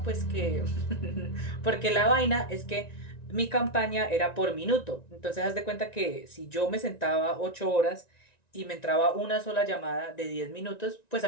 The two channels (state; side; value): late; right; 1.9 ms